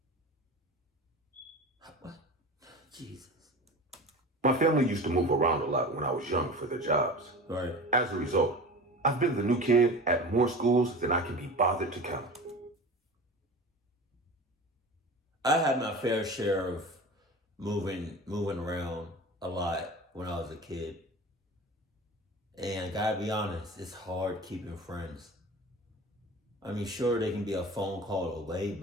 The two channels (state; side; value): normal; both; correlation 0.34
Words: What? Jesus. My family used to move around a lot when I was young for their jobs. Right. As a result, I've been the new kid at more schools than I can be bothered to count. I had my fair share of moving around a lot when I was a kid. And gotta be honest, it's hard keeping friends. I mean, sure, they can be a phone call away,